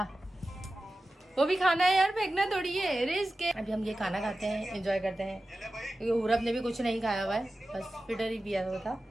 वो भी खाना है यार, फेंकना थोड़ी है, रिस्क है। अभी हम ये खाना खाते हैं, एंजॉय करते हैं, क्योंकि पूरब ने भी कुछ नहीं खाया हुआ है, बस फिटर ही पिया हुआ था।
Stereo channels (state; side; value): normal; both; correlation 0.94